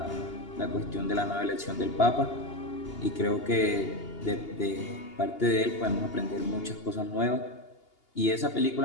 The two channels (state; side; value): late; right; 2.8 ms